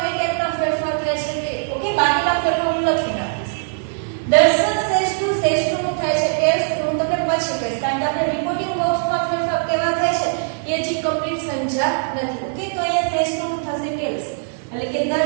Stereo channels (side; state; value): left; silent; 65 dB below the other